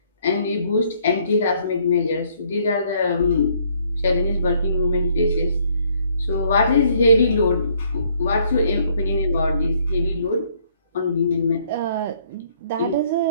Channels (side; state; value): both; inverted; correlation -0.66